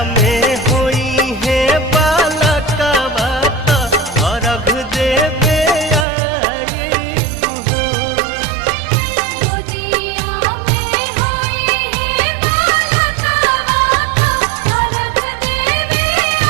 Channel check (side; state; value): left; drops out; at 6.1 s